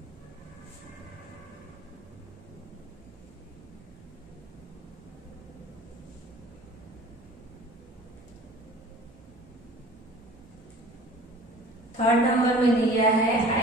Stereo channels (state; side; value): normal; both; correlation 0.45